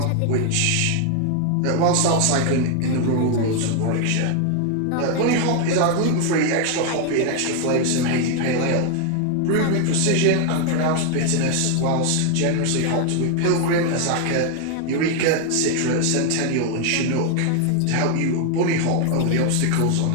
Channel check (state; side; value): different; both; correlation 0.00